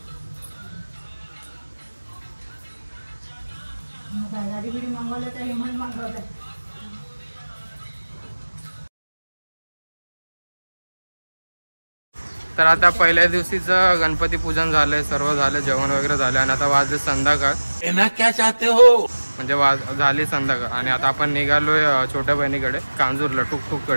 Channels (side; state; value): both; inverted; correlation -1.00